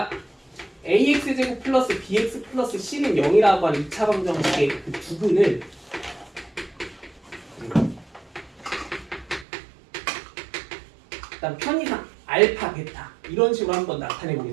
ax 제곱 플러스 bx 플러스 c는 0이라고 하는 2차 방정식의 그 부분을 일단 편의상 알파, 베타 이런 식으로 한번 나타내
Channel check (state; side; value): drops out; left; at 9.5 s